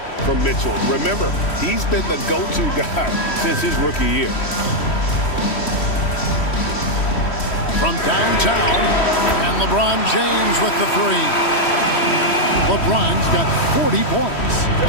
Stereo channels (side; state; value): right; late; 3.1 ms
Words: from Mitchell. Remember, he's been the go-to guy since his rookie year. From downtown, and LeBron James with the three. LeBron's got 40 points.